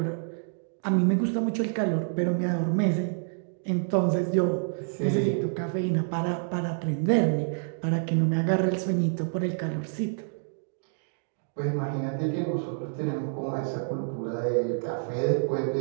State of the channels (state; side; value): silent; left; digital silence